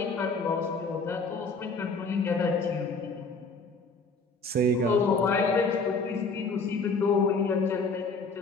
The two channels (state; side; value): quieter; right; 3.7 dB